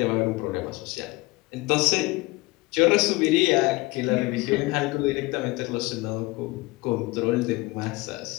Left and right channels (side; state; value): right; quieter; 22.4 dB